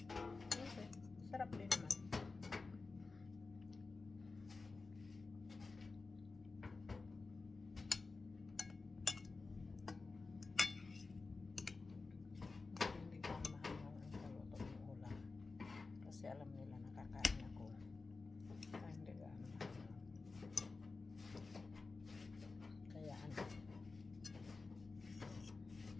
Okay. Sarap din naman. Hindi ko mahal ang kaluto ng ulam. Kasi alam nila nakakain ako. Kaya hindi ka mahal. Kaya ano.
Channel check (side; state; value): right; quieter; 4.0 dB